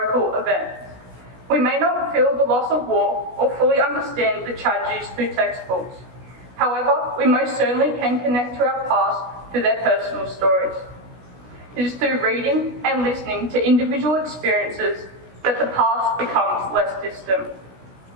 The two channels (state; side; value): late; left; 16 ms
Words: events. We may not feel the loss of war or fully understand the tragedies through textbooks. However, we most certainly can connect to our past through their personal stories. It is through reading and listening to individual experiences that the past becomes less distant.